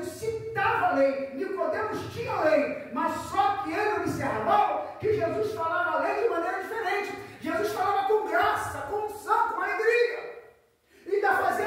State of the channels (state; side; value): identical; both; correlation 1.00